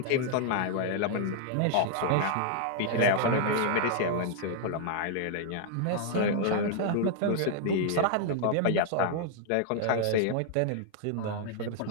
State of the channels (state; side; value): different; both; correlation 0.00